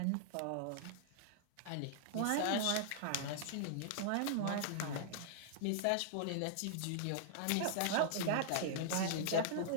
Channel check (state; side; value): different; both; correlation -0.01